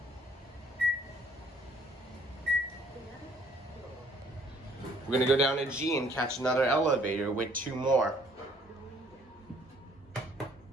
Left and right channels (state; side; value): normal; both; correlation 0.61